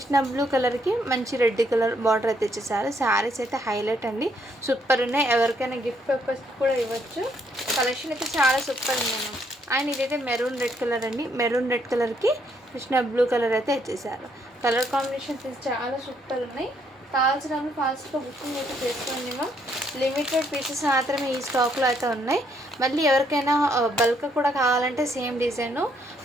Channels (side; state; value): both; normal; correlation 0.71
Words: బ్లూ కలర్కి మంచి రెడ్ కలర్ బార్డర్ అయితే ఇచ్చేసారు. శారీస్ అయితే హైలైట్ అండి, సూపర్ ఉన్నాయి. ఎవరికైనా గిఫ్ట్ పర్పస్ కూడా ఇవ్వచ్చు. కలెక్షన్ అయితే చాలా సూపర్ ఉంది. అండ్ ఇదైతే మెరూన్ రెడ్ కలర్ అండి, మెరూన్ రెడ్ కలర్కి కృష్ణ బ్లూ కలర్ అయితే ఇచ్చేసారు. కలర్ కాంబినేషన్స్ చాలా సూపర్ ఉన్నాయి. కావాల్సిన ఫాస్ట్గా బుకింగ్ అయితే చేసుకోండి మ్యామ్. లిమిటెడ్ పీసెస్ మాత్రమే ఈ స్టాక్లో అయితే ఉన్నాయి. మళ్ళీ ఎవరికైనా బల్క్ కూడా కావాలంటే సేమ్ డిజైను